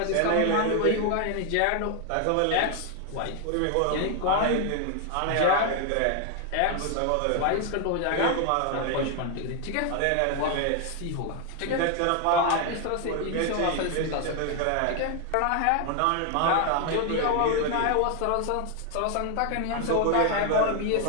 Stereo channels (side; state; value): both; different; correlation 0.00